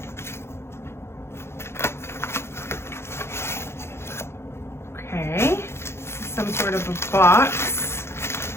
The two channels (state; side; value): late; right; 0.12 ms